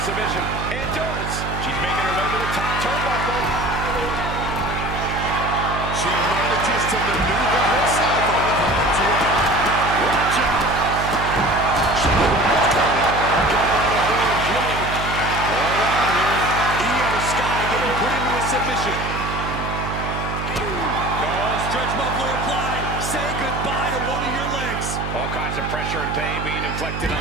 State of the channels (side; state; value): right; noise; hum, 6 dB below the sound